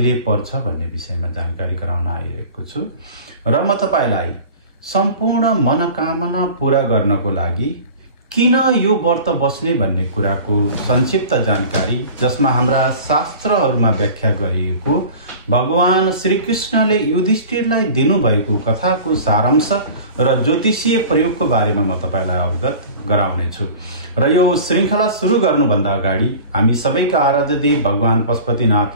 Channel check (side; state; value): both; inverted; correlation -0.40